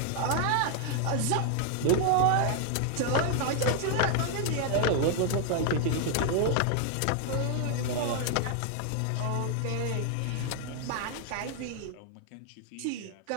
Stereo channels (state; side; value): different; both; correlation 0.00